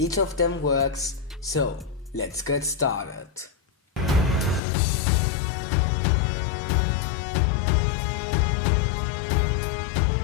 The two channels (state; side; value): drops out; right; at 4.6 s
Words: of them works, so let's get started.